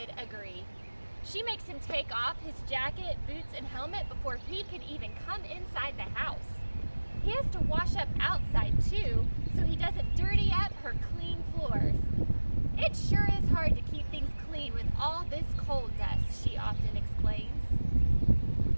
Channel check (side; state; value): both; inverted; correlation -1.00